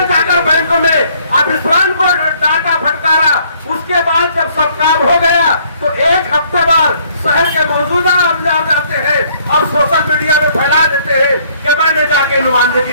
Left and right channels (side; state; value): both; inverted; correlation -0.63